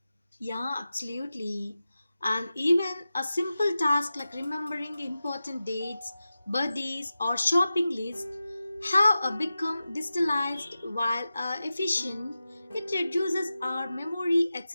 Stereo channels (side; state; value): both; inverted; correlation -0.94